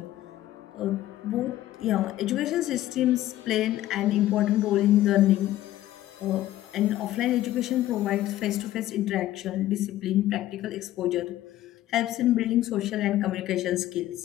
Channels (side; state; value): right; quieter; 14.3 dB